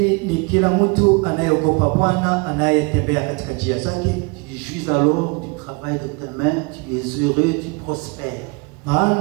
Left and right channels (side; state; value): left; quieter; 29.9 dB